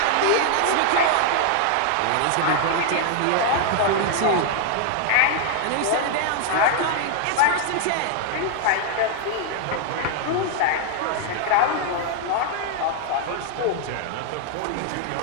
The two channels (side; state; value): both; different; correlation 0.00